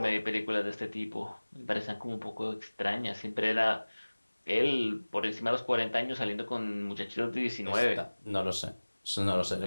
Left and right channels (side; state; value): both; inverted; correlation -1.00